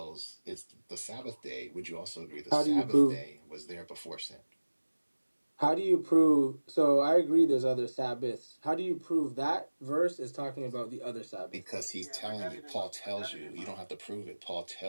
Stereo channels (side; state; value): both; inverted; correlation -1.00